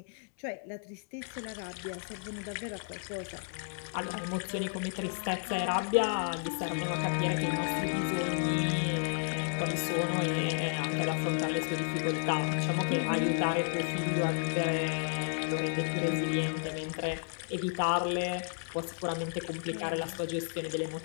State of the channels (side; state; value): right; silent; digital silence